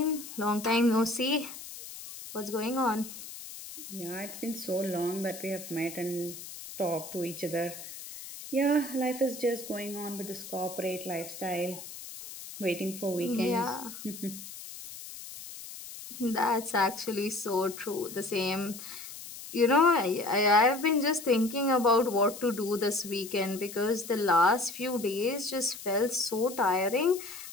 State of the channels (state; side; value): noise; left; hiss, 12 dB below the sound